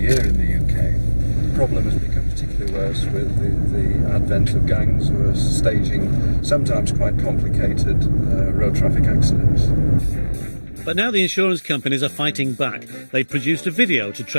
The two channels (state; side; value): inverted; both; correlation -1.00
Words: in the UK. The problem has become particularly worse with the advent of gangs who are staging sometimes quite complicated road traffic accidents. But now the insurance companies are fighting back. They produced a video to